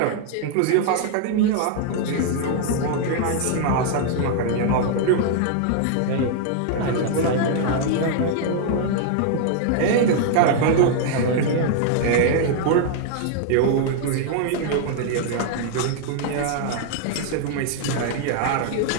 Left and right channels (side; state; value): both; different; correlation 0.00